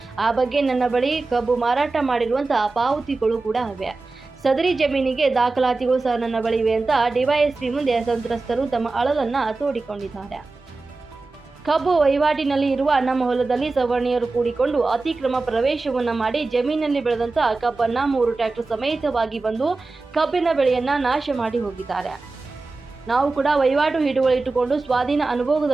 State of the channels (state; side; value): quieter; left; 3.6 dB